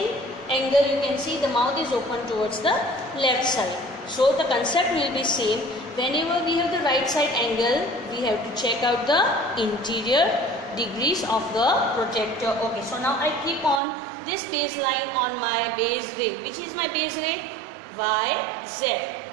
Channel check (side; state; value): left; drops out; at 13.8 s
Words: angle you can see the mouth is open towards the left side. So the concept will be same. Whenever we have the right side angle, we have to check out the interior degrees of the protector. Okay, so now I keep on this baseline on my base ray. Which is my base ray? Y, Z.